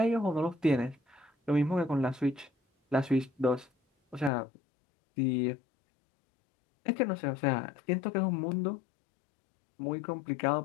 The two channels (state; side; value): drops out; right; at 4.3 s